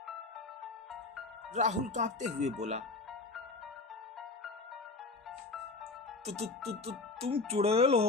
राहुल कांपते हुए बोला, तुम चुड़ैल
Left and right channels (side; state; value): right; quieter; 3.6 dB